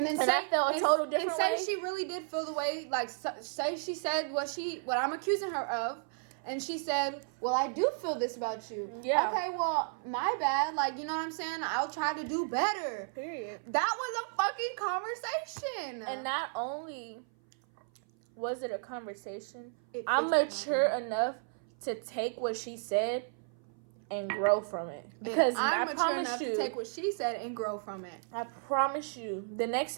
then I felt a total different way. And say she really did feel the way, like, say she said what I'm accusing her of, and she said, well, I do feel this about you. Yeah. Okay, well, my bad. Like, you know what I'm saying? I'll try to do better. Period. That was a fucking conversation. And not only was it a conversation, I'm mature enough to take what she said and grow from it. Because I'm I mature enough to take what she said and grow from it. I promise you, the next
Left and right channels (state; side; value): silent; left; 55 dB below the other